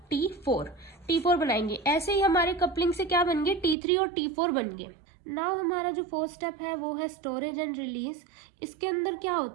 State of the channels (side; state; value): left; drops out; at 3.8 s